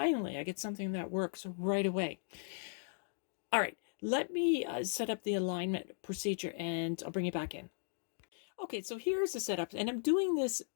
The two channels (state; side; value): silent; right; digital silence